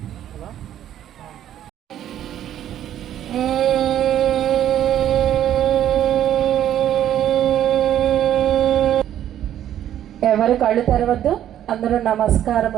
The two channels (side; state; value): left; quieter; 11.1 dB